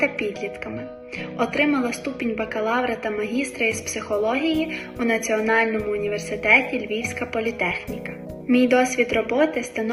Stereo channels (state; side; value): identical; both; correlation 1.00